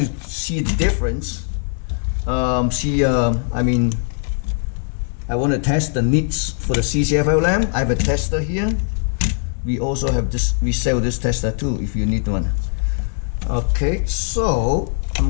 see the difference. I want to test the nits for the CCFL lamp. I have a tester here. We also have this. We sell this tester too if you need one. Okay, so I'm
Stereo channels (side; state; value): right; silent; 61 dB below the other